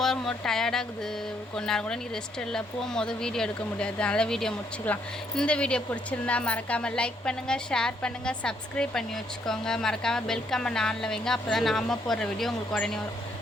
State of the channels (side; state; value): both; normal; correlation 0.71